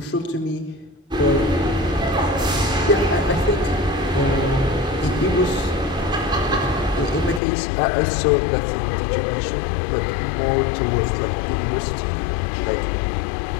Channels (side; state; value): right; drops out; at 7.4 s